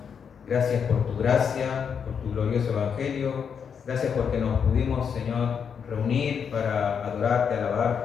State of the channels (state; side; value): quieter; right; 7.0 dB